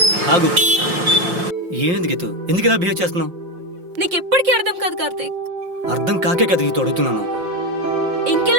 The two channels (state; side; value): late; left; 5.6 ms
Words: ఆగు. ఏమైంది గీతు? ఎందుకు ఇలా బిహేవ్ చేస్తున్నావు? నీకెప్పటికీ అర్థం కాదు కార్తీక్. అర్థం కాకే కదా గీతు అడుగుతున్నాను.